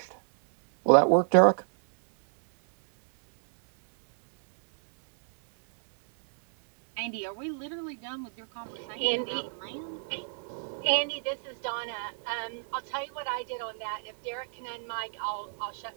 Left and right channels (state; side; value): silent; left; digital silence